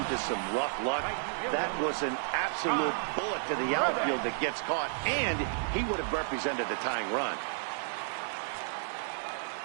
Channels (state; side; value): silent; left; digital silence